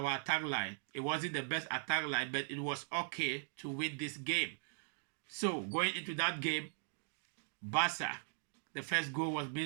attack line. It wasn't the best attack line, but it was okay to win this game. So going into that game, Barca, the first goal was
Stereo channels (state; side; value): silent; left; digital silence